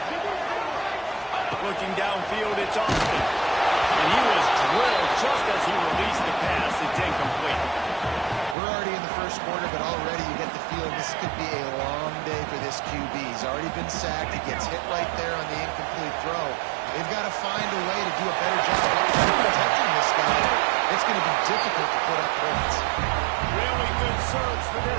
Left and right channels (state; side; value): drops out; left; at 8.6 s